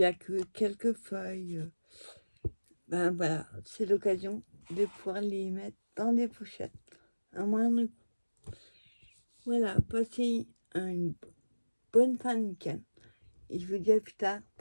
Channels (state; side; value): inverted; both; correlation -1.00